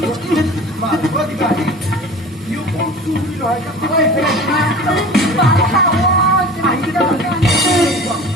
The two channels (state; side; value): normal; both; correlation 0.39